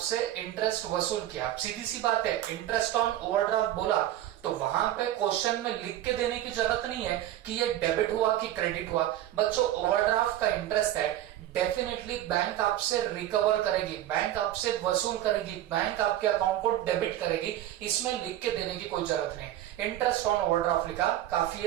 इंटरेस्ट वसूल किया। सीधी सी बात है, इंटरेस्ट ऑन ओवरड्राफ्ट बोला तो वहां पे क्वेश्चन में लिख के देने की जरूरत नहीं है कि ये डेबिट हुआ कि क्रेडिट हुआ। बच्चों, ओवरड्राफ्ट का इंटरेस्ट है, डेफिनेटली बैंक आपसे रिकवर करेगी, बैंक आपसे वसूल करेगी, बैंक आपके अकाउंट को डेबिट करेगी, इसमें लिख के देने की कोई जरूरत नहीं। इंटरेस्ट ऑन ओवरड्राफ्ट लिखा काफी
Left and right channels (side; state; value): left; quieter; 13.1 dB